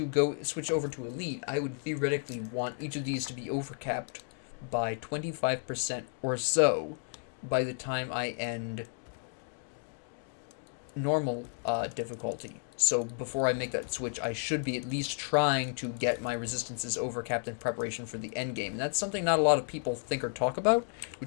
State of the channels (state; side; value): silent; right; 56 dB below the other